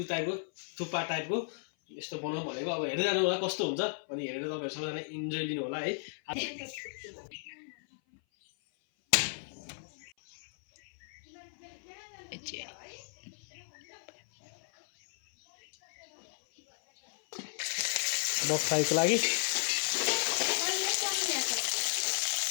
टाइपको थुक्पा टाइपको यस्तो बनाउँ भनेको। अब हेर्दै जानु होला कस्तो हुन्छ अनि हेरेर तपाईहरु सबैजना इन्जोय लिनु होला है। बफ फ्राईको लागि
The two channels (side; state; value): right; silent; 55 dB below the other